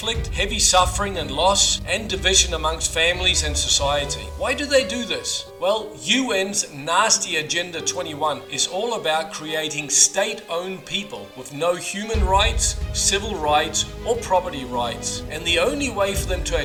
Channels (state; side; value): identical; both; correlation 1.00